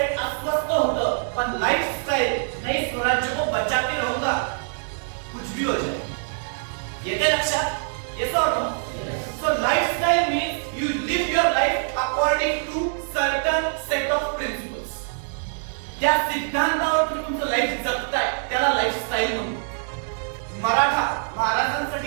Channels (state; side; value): silent; left; digital silence